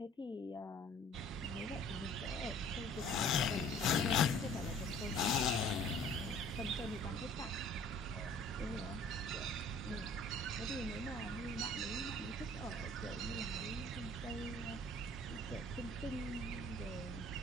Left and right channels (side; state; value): both; normal; correlation 0.52